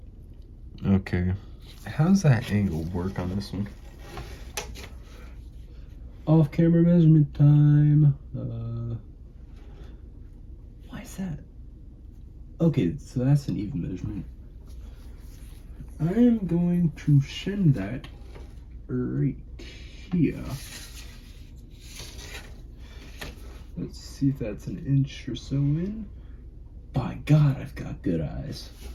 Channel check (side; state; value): both; identical; correlation 1.00